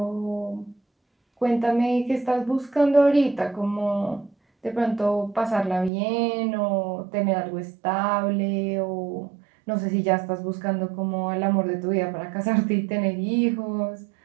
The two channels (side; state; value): left; drops out; at 5.9 s